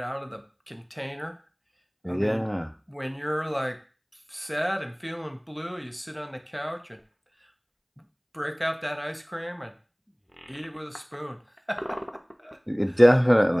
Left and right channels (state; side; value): identical; both; correlation 1.00